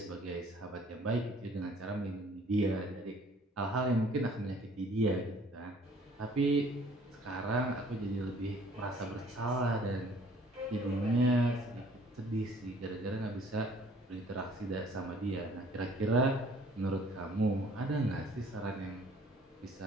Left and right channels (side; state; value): both; normal; correlation 0.56